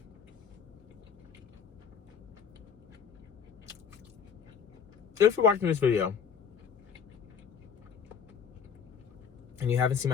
if you're watching this video and you haven't seen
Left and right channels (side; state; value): right; quieter; 6.9 dB